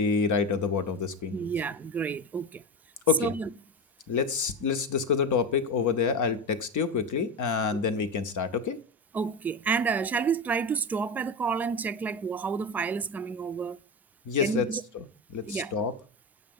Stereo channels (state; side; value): normal; both; correlation 0.21